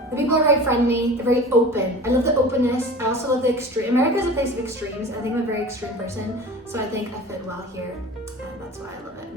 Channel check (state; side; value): normal; both; correlation 0.38